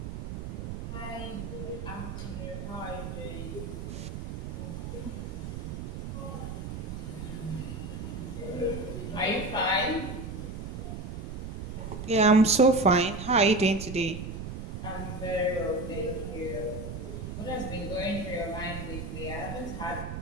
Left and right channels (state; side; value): noise; right; rumble, 6 dB below the sound